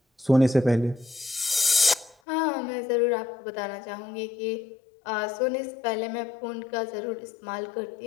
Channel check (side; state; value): right; drops out; at 2.1 s